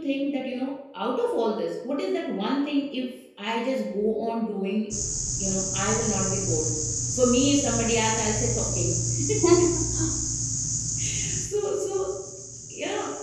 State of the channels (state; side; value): identical; both; correlation 1.00